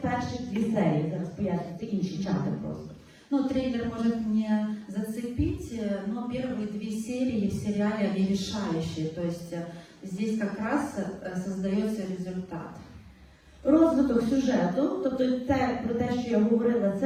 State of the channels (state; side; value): identical; both; correlation 1.00